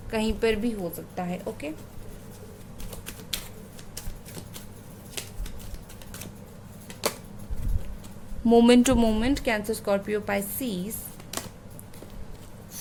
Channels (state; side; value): identical; both; correlation 1.00